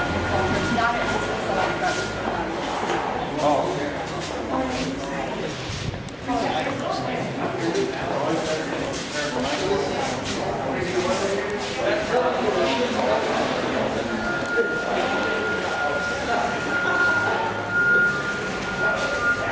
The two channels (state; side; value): identical; both; correlation 1.00